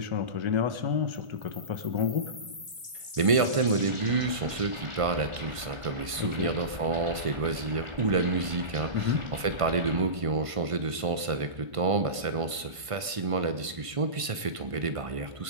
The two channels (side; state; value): left; late; 1.5 ms